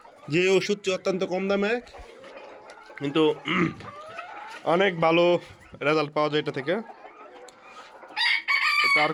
যে ওষুধটি অত্যন্ত কম দামে কিন্তু অনেক ভালো রেজাল্ট পাওয়া যায় এটা থেকে। তার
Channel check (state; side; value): identical; both; correlation 1.00